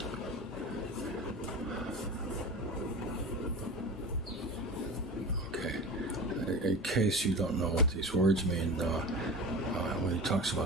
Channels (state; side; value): normal; both; correlation 0.31